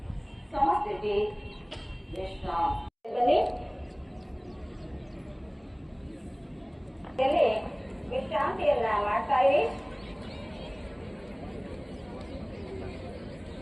ಸಮಸ್ಥಿತಿ. ವಿಶ್ರಾಂತಿ. ವಿಶ್ರಾಂತಿಯನ್ನ ಮಾಡ್ತಾ ಇರಿ.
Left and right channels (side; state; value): both; identical; correlation 1.00